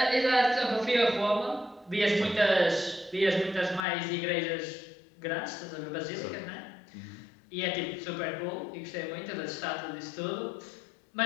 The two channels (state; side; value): drops out; right; at 3.9 s